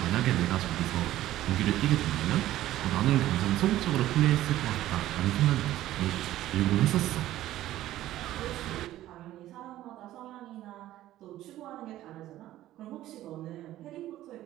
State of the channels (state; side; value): quieter; left; 14.3 dB